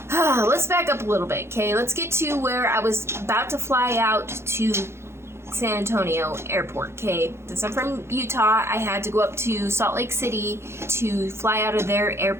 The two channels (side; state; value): left; late; 0.12 ms